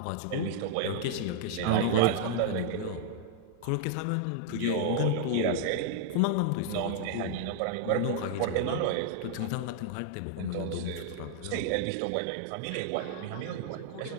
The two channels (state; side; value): different; both; correlation -0.01